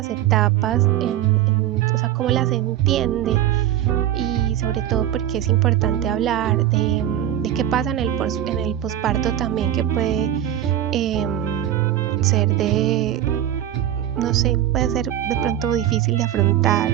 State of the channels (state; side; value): quieter; left; 11.7 dB